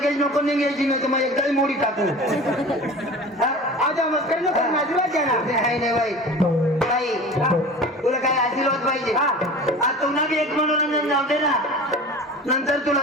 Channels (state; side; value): normal; both; correlation 0.37